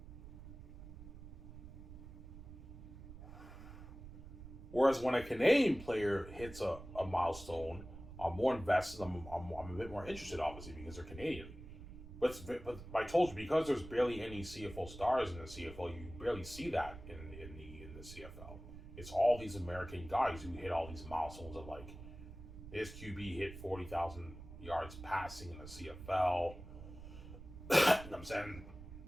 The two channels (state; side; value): noise; right; rumble, 13 dB below the sound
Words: Whereas when a Canadian player hits a milestone, I'm more invested. I'm a bit more interested, obviously, because they're Canadian. But I told you because there's barely any CFL stars in the CFL, you barely see that in the CFL. It's all these American guys who hit all these milestones of like this QB hit 40,000 yards passing in the CFL. You know what I'm saying?